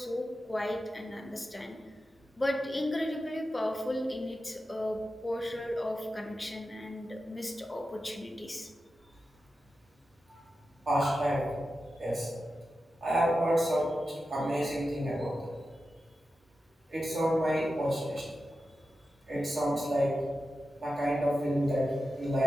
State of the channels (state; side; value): normal; both; correlation 0.91